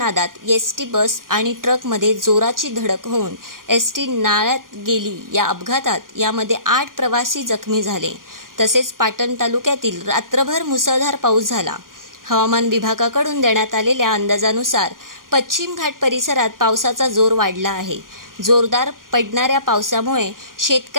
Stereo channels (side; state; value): left; late; 0.91 ms